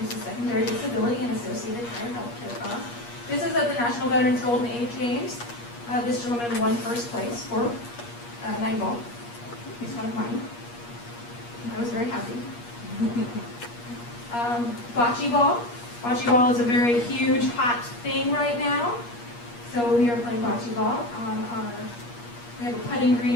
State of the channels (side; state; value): right; late; 8.4 ms